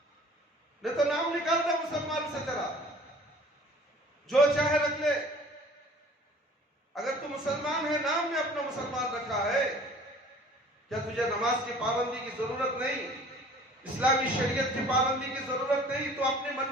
نہیں تو نام نکال دے مسلمان سے تیرا، جو چاہے رکھ لے، اگر تو مسلمان ہے، نام نے اپنا مسلمان رکھا ہے، کیا تجھے نماز کی پابندی کی ضرورت نہیں، اسلامی شریعت کی پابندی کی ضرورت نہیں، تو اپنی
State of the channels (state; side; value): normal; both; correlation 0.50